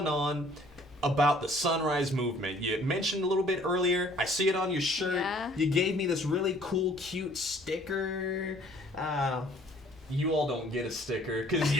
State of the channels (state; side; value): normal; both; correlation 0.57